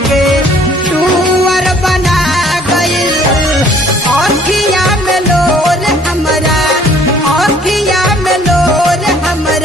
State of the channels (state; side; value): normal; both; correlation 0.57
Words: टूअर बना गइल। आँखिया में लोर हमरा, आँखिया में लोर